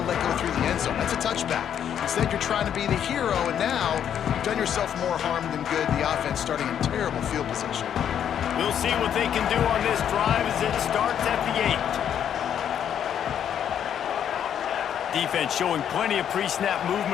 let go through the end zone. That's a touchback. Instead, you're trying to be the hero, and now you've done yourself more harm than good. The offense starting in terrible field position. We'll see what they can do on this drive as it starts at the 8. Defense showing plenty of pre-snap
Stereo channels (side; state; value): right; quieter; 9.2 dB